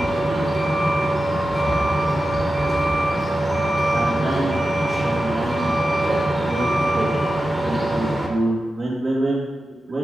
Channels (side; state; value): both; normal; correlation 0.92